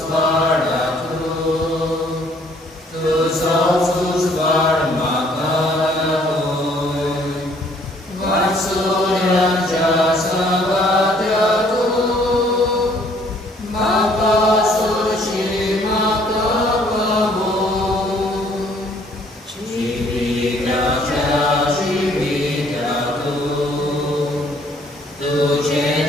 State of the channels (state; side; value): normal; both; correlation 0.61